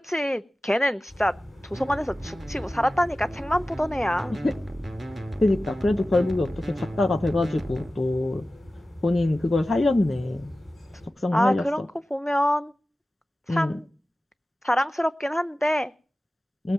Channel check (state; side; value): normal; both; correlation 0.95